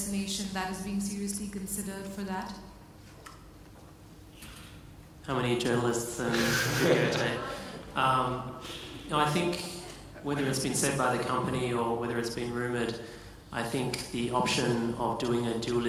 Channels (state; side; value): identical; both; correlation 1.00